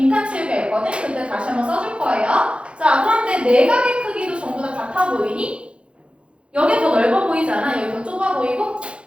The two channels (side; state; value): left; late; 0.058 ms